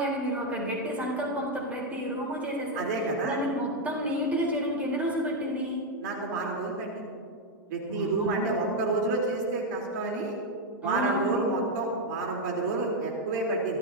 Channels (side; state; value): both; normal; correlation 0.02